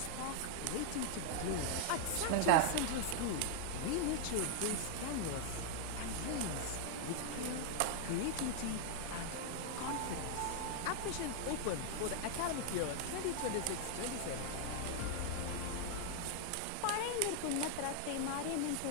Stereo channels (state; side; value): different; both; correlation 0.00